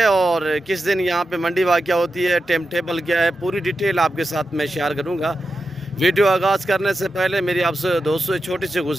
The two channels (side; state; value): both; normal; correlation 0.90